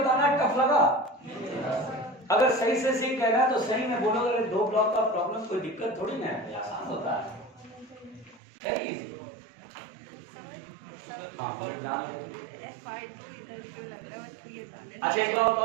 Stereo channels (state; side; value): drops out; left; at 8.4 s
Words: टफ लगा, अगर सही से सीख कहना है तो सही में बोलो, अगर दो ब्लॉक का प्रॉब्लम कोई दिक्कत थोड़ी ना है, आसान होता है, वेरी इजी। अच्छा एक बात